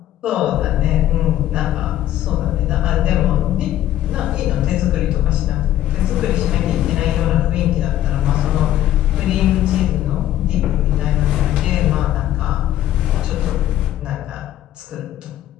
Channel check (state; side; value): quieter; right; 13.0 dB